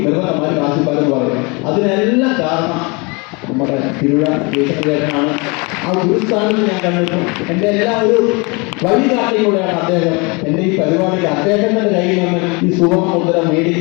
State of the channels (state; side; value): quieter; right; 28.9 dB